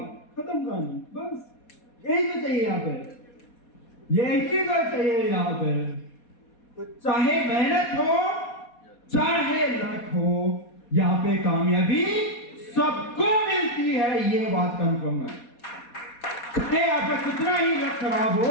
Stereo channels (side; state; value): right; late; 4.2 ms